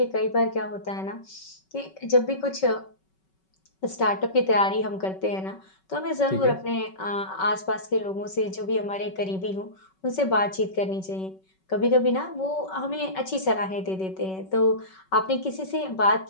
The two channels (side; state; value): right; late; 5.3 ms